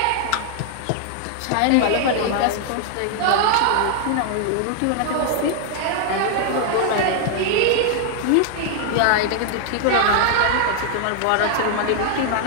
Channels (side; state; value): both; different; correlation 0.00